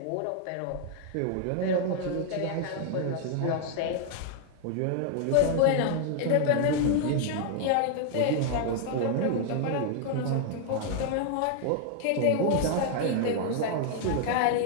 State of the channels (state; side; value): different; both; correlation 0.00